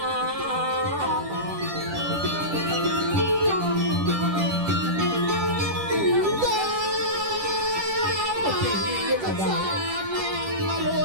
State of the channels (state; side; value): late; left; 10 ms